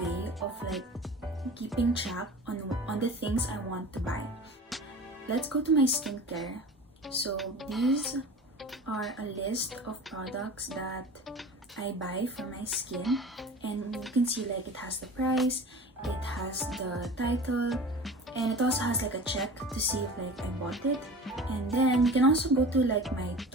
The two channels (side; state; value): both; normal; correlation 0.37